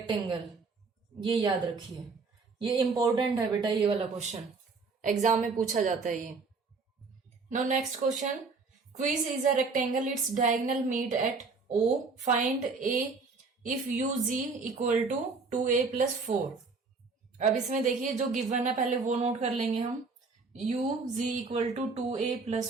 ये याद रखिए, ये इंपॉर्टेंट है बेटा, ये वाला क्वेश्चन एग्जाम में पूछा जाता है ये। Now next question, quiz is a rectangle, its diagonal meet at O, find a if U G equal to 2a + 4। अब इसमें देखिए जो गिवन है पहले वो नोट कर लेंगे हम। U G equal to 2a +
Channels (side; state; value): left; quieter; 4.4 dB